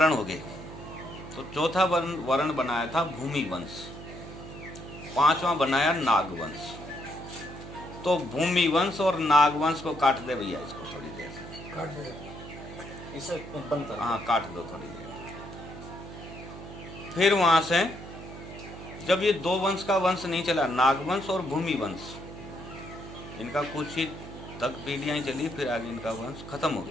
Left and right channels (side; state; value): right; noise; hum, 13 dB below the sound